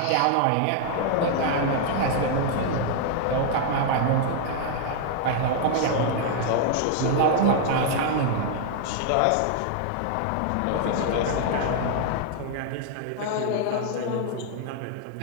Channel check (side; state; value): both; different; correlation 0.00